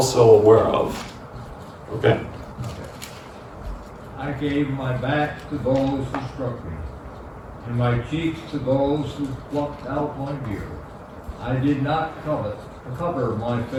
aware of. Okay. I gave my back to those who struck me, and my cheeks to those who plucked out my beard. I did not cover my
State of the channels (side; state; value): both; identical; correlation 1.00